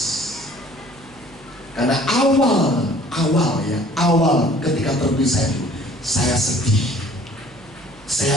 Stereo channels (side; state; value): right; noise; hum, 25 dB below the sound